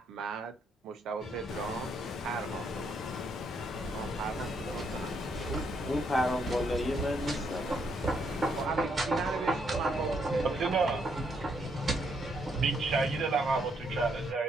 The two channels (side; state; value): both; normal; correlation 0.74